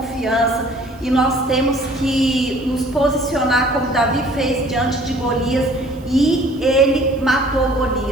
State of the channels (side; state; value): right; noise; hiss, 29 dB below the sound